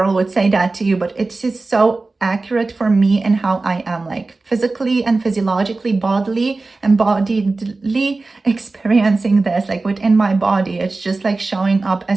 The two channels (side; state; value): left; quieter; 3.5 dB